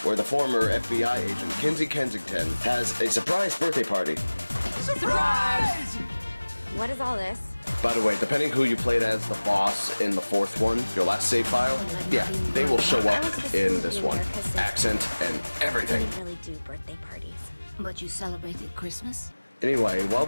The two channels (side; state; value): both; inverted; correlation -1.00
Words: where the former FBI agent, Kinsey Kensington, has a surprise birthday party. Surprise! What is all this? By the way, depending who you played as the boss in the fourth one, your last save file, yeah, they will show up in this one. Accent and everything. We really do birthday parties. But you celebrated Christmas? Anyway, while